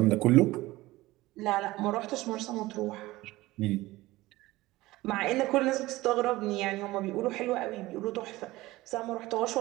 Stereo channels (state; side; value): quieter; left; 18.6 dB